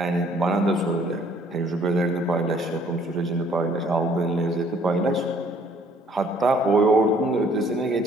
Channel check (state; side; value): normal; both; correlation 0.61